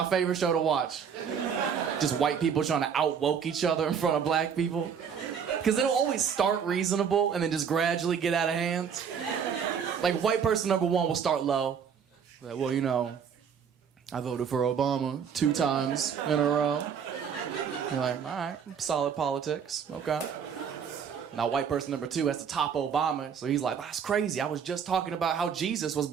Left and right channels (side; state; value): left; quieter; 7.2 dB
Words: favorite show to watch. Just white people trying to out-woke each other in front of black people. Because it'll always start reasonable and then just gradually get out of hand. Like, white person number one will start low. Like, well, you know, I voted for Obama 2 times in a row. You're like, all right, solid politics, okay. Now, white person number 2 has to top Obama, so he's like, that's crazy. I was just talking about how Jesus was